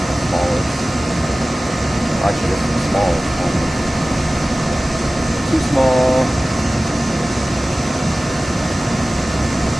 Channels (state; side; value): normal; both; correlation 0.97